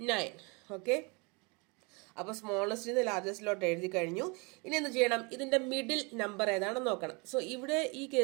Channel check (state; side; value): quieter; left; 30.1 dB